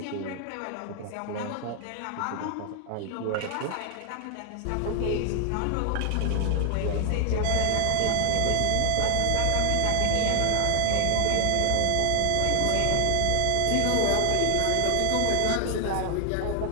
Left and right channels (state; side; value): different; both; correlation 0.00